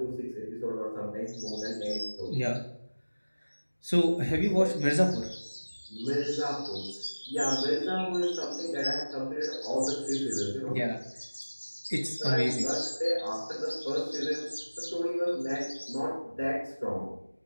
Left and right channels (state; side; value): inverted; both; correlation -1.00